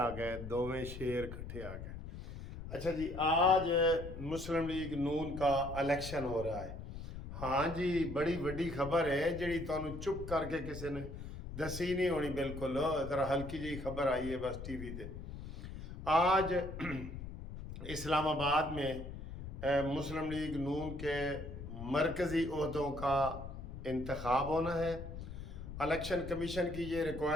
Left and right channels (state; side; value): noise; left; rumble, 10 dB below the sound